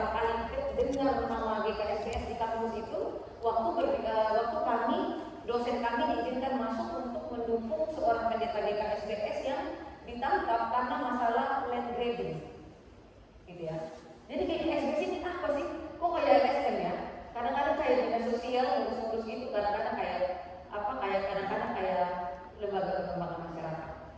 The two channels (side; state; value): both; identical; correlation 1.00